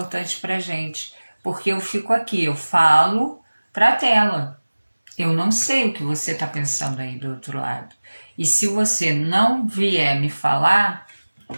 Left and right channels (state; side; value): inverted; both; correlation -1.00